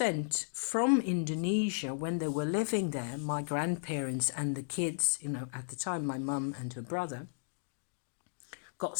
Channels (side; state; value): right; silent; digital silence